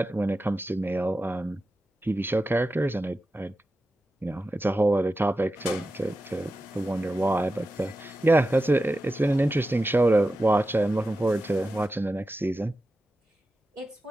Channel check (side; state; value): both; normal; correlation 0.92